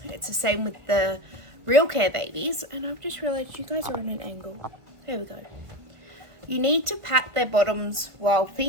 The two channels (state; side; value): late; left; 1.5 ms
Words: it's the same with the Realcare babies, and I've just realized you guys are on an angle. There we go. You need to pat their bottoms while